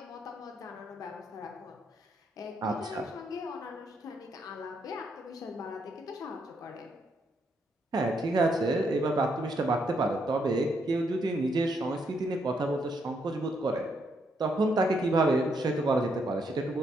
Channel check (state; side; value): normal; both; correlation 0.76